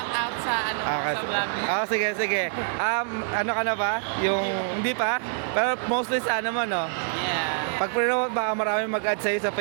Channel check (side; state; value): left; silent; 57 dB below the other